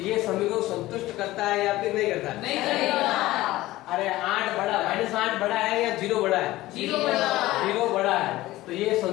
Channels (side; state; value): right; quieter; 17.2 dB